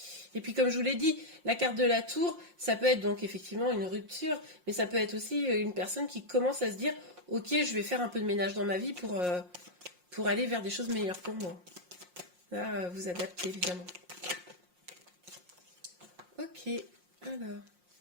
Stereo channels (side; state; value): left; late; 5.6 ms